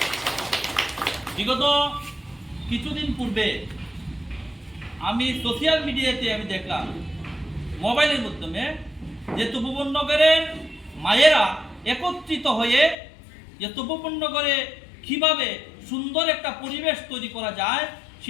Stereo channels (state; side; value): drops out; right; at 13.0 s